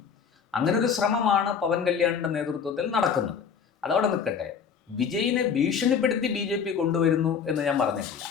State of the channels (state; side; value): quieter; right; 6.8 dB